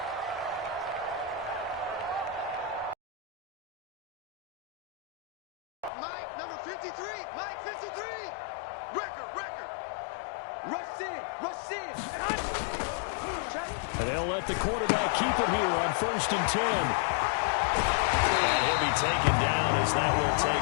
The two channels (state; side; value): drops out; right; at 5.9 s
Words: Number 53. Mike 53. Record. Rush in. And they'll let the quarterback keep it here on 1st and 10. And he'll be taken down as that will